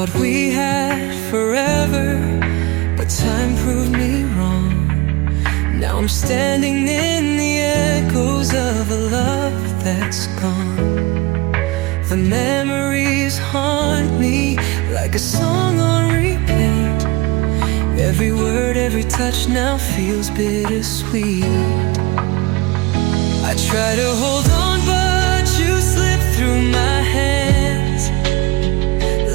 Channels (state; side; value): quieter; left; 21.8 dB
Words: we had forever, but time proved me wrong. Now I'm standing in the echoes of a love that's gone. The memories haunt me like a song on repeat. Every word, every touch now feels bittersweet. I try to hold on, but you slip through my hands